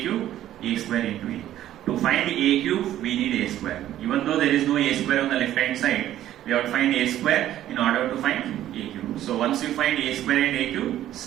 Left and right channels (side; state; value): left; quieter; 12.6 dB